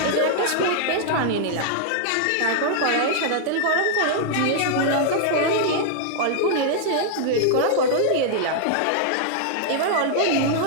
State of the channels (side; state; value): both; different; correlation -0.01